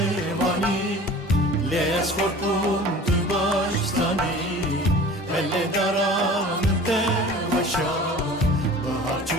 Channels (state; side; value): normal; both; correlation 0.42